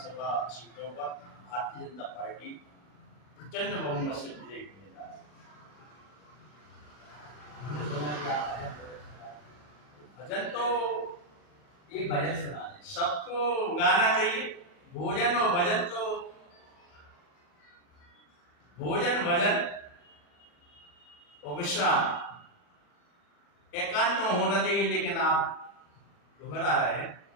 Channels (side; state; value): right; late; 40 ms